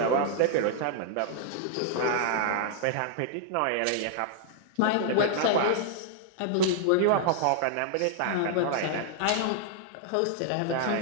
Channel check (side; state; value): both; different; correlation -0.01